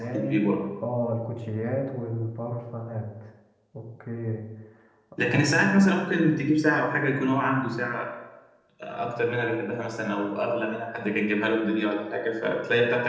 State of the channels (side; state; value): both; identical; correlation 1.00